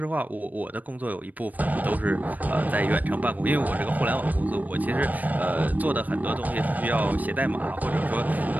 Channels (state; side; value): late; left; 0.080 ms